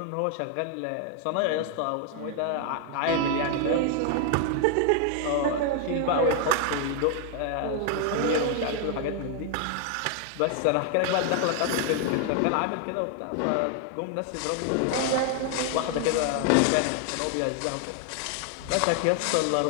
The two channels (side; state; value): both; different; correlation 0.00